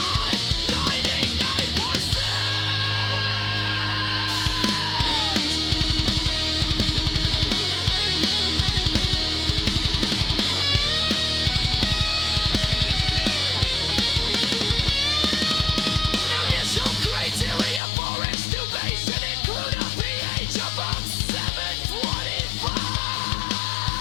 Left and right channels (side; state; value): right; drops out; at 17.8 s